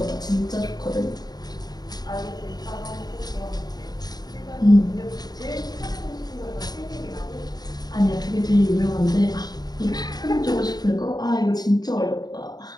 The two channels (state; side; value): late; right; 0.19 ms